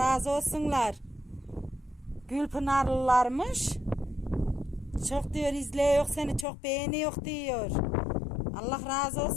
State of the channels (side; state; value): right; drops out; at 6.5 s